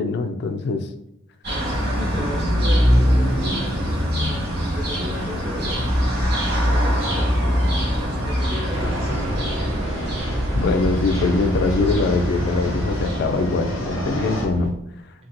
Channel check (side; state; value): both; normal; correlation 0.70